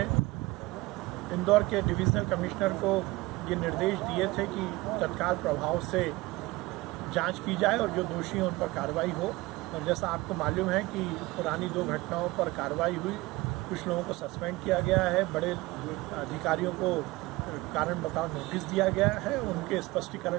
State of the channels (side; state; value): left; quieter; 20.9 dB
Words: इंदौर के डिविजनल कमिश्नर को ये निर्देश दिए थे कि तत्काल प्रभाव से जांच की जाए और जो दोषी हैं उन पर कार्रवाई हो। और जैसा आपको मालूम है कि पुरानी 2 घटनाओं पर कार्रवाई हुई, कुछ लोगों को सस्पेंड किया गया है, बड़े अधिकारियों को कारण बताओ नोटिस दिया गया है, उनके